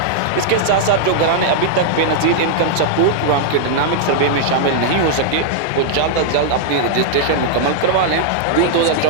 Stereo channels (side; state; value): both; different; correlation -0.01